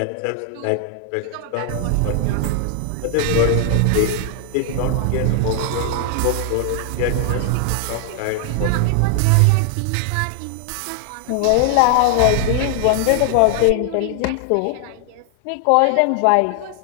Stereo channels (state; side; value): different; both; correlation 0.00